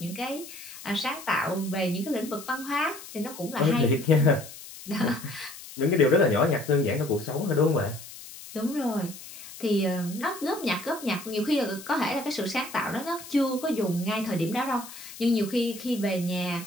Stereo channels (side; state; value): left; noise; hiss, 15 dB below the sound